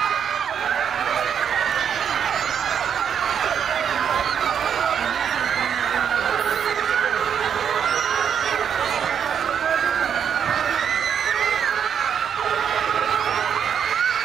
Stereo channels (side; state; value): left; quieter; 8.0 dB